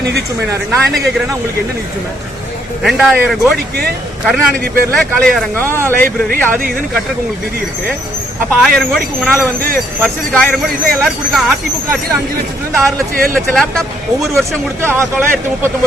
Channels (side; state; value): both; normal; correlation 0.70